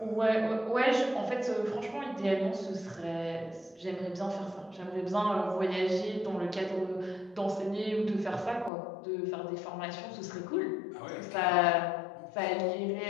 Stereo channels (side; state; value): right; drops out; at 8.7 s